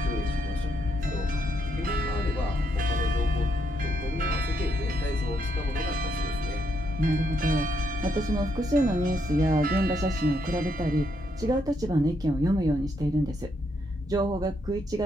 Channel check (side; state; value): both; normal; correlation 0.76